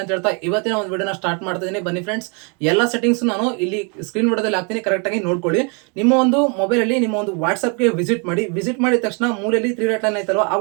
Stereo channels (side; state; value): left; quieter; 34.9 dB